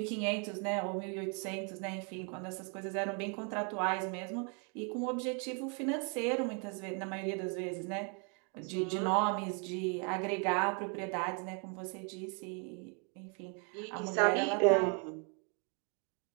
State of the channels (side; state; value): left; quieter; 37.8 dB